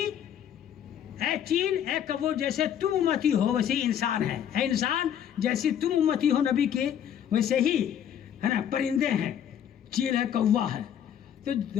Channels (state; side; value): quieter; right; 9.5 dB